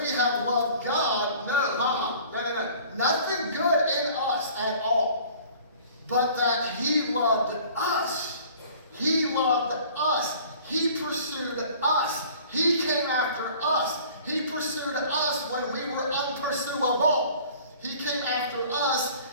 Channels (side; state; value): both; inverted; correlation -0.48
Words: we have loved God. No. Nothing good in us at all. But that He loved us. He loved us. He pursued us. He came after us. He pursued us when we were unpursuable. He came after us